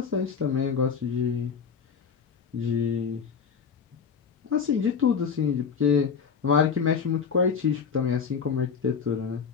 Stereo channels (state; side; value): quieter; right; 6.3 dB